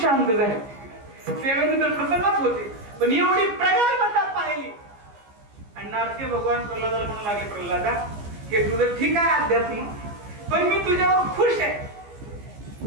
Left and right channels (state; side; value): late; left; 15 ms